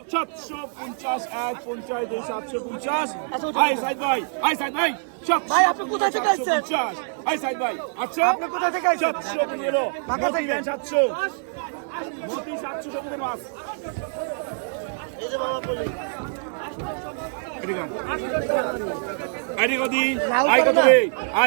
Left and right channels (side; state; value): left; silent; digital silence